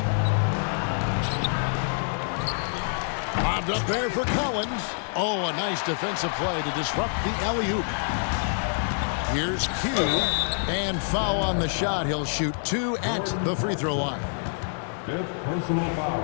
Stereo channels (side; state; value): right; silent; 58 dB below the other